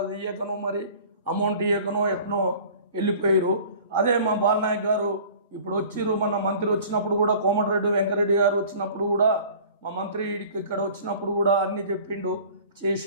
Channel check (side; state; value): both; inverted; correlation -0.46